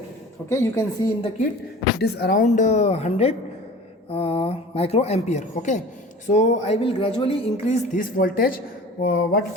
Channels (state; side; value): normal; both; correlation 0.41